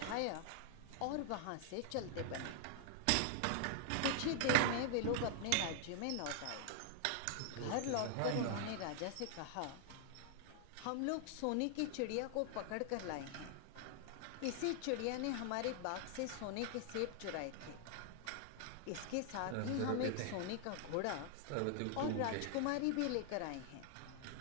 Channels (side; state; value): both; different; correlation 0.00